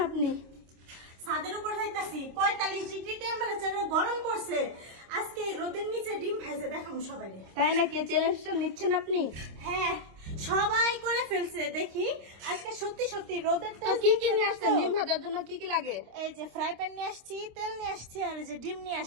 আপনি? ছাদের উপর যাইতাছি। 45 ডিগ্রি টেম্পারেচারে গরম পড়ছে। আজকে রোদের নিচে ডিম ভাজা দেখাবো সবাইকে। তাই নাকি? চ্যালেঞ্জটা নিচ্ছেন আপনি? হ্যাঁ, সবাই করে ফেলছে। দেখি আজকে সত্যি সত্যি রোদের তো কি কি নিয়ে আসছেন? ডিম ভাজার জন্য কি কি লাগে? এই যে ফ্রাই প্যান নিয়ে আসছি, তেল নিয়ে আসছি, আর এই যে ডিম নিয়ে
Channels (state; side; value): late; left; 26 ms